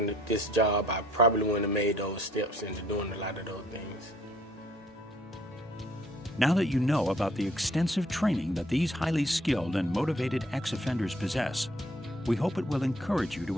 this job, I probably wouldn't have made those steps into doing a lot of those things. Now that you know about the extensive training that these highly skilled and motivated ex-offenders possess, we hope it will encourage you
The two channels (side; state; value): both; normal; correlation 0.61